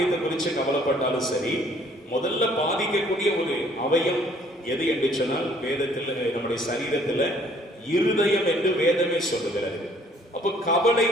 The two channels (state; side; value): normal; both; correlation 0.60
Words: குறித்து கவலைப்பட்டாலும் சரி, முதல்ல பாதிக்கக்கூடிய ஒரு அவயம் எது என்று சொன்னால், வேதத்தில் நம்முடைய சரீரத்துல இருதயம் என்று வேதமே சொல்லுகிறது. அப்ப கவலை